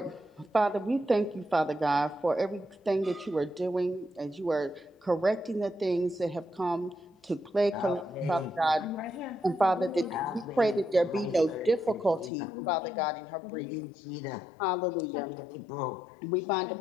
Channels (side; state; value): right; drops out; at 12.3 s